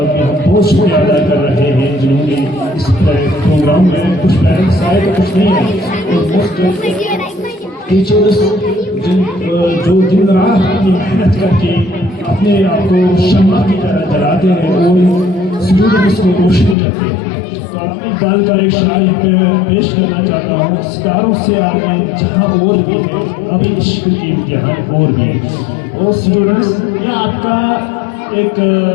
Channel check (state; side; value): drops out; right; at 16.8 s